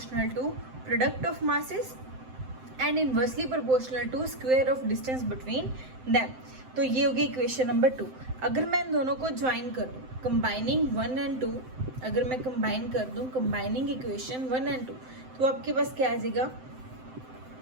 to product of masses and inversely proportional to square of distance between them. तो ये होगी इक्वेशन नंबर 2। अगर मैं इन दोनों को ज्वाइन कर दूँ, कंबाइनिंग 1 एंड 2, अगर मैं कंबाइन कर दूँ कंबाइनिंग इक्वेशन 1 एंड 2, तो आपके पास क्या आ जाएगा,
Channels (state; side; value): late; left; 7.8 ms